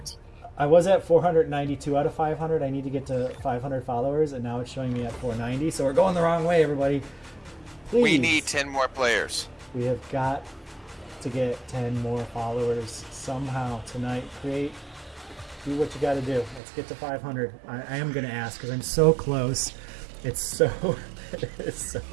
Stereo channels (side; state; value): left; drops out; at 16.6 s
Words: was at 492 out of 500. I need to get to 500 followers, and now it's showing me at 490. So we're going the wrong way, everybody. Please. We need 10 more players. We have got to get 10 more followers somehow tonight. Do what you got to do. Let's get to 500. I am going to ask because I'm so close. It's so